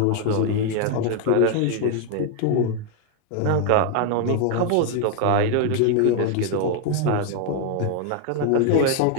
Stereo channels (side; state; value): both; different; correlation 0.00